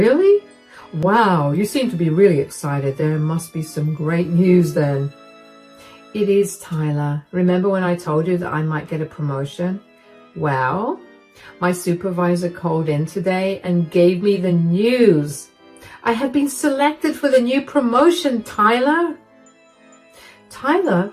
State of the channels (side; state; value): both; identical; correlation 1.00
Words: Wow, you seem to be really excited. There must be some great news then. It is, Tyler. Remember when I told you that I might get a promotion? Well, my supervisor called in today and gave me the news. I have been selected for the new promotion, Tyler. Tyler